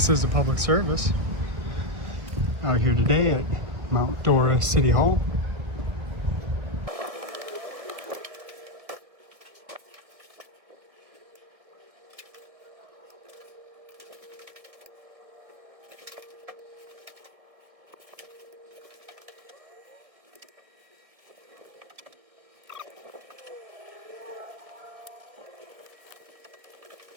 is a public service out here today at Mount Dora City Hall.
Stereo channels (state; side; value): late; left; 1.8 ms